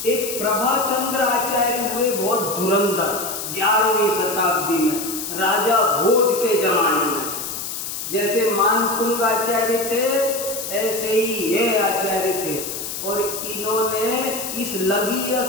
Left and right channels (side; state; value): left; noise; hiss, 6 dB below the sound